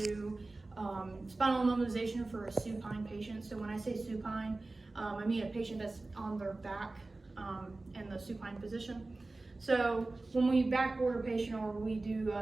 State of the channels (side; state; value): left; quieter; 3.2 dB